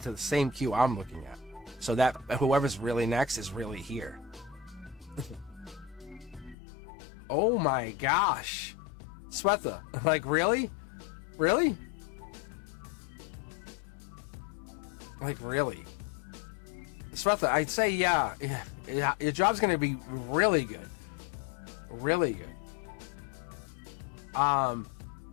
the same queue I'm looking at. So that whoever's really next is really here. Oh my gosh. Swetha, like, really? Really? Like, really? Swetha, I'd say, yeah, your job's going to be really good. Really good.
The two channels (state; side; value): drops out; right; at 6.6 s